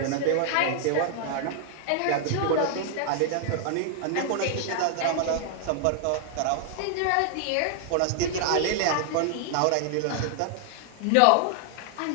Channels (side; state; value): both; different; correlation 0.00